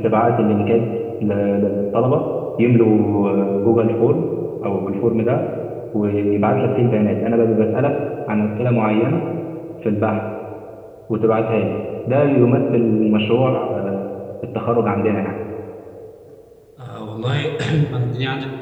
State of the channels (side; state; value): both; identical; correlation 1.00